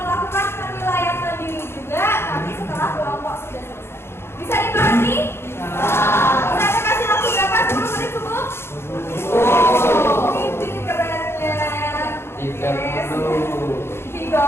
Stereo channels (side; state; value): right; late; 0.12 ms